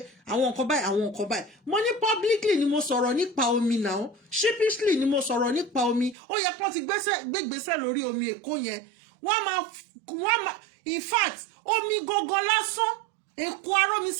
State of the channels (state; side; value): drops out; left; at 6.2 s